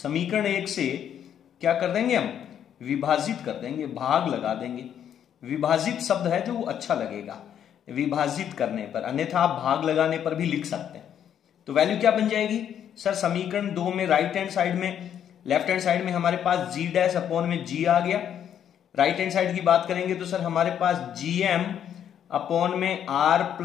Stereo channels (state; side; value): quieter; right; 9.4 dB